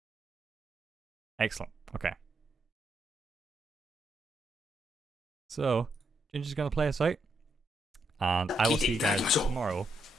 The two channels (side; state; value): both; normal; correlation 0.79